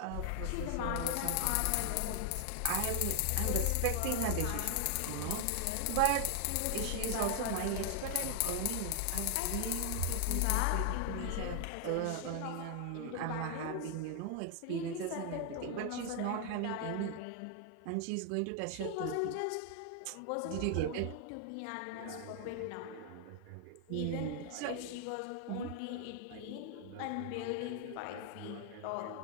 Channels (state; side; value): different; both; correlation 0.00